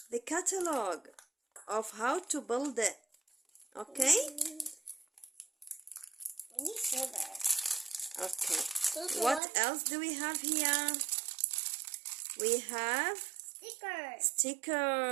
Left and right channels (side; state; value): left; drops out; at 9.4 s